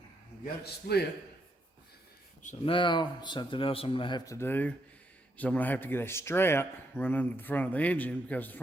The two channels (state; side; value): normal; both; correlation 0.78